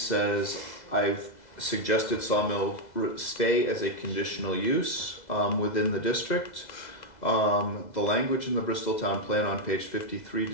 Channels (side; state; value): right; late; 2.0 ms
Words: I've suggested sawmill stay as a conditional use within the district. The language in the Bristol Town Plan on page 53